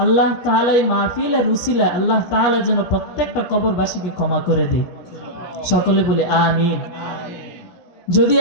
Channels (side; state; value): right; late; 17 ms